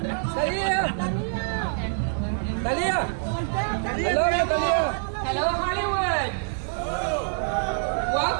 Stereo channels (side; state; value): left; silent; 61 dB below the other